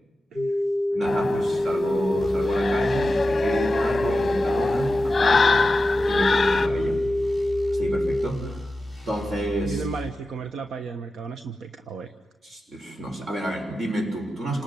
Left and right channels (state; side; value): normal; both; correlation 0.92